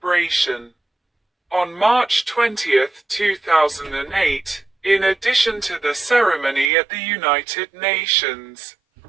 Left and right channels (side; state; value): left; drops out; at 6.7 s